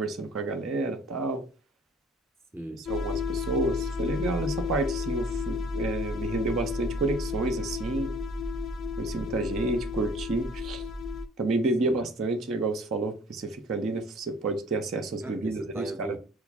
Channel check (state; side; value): normal; both; correlation 0.52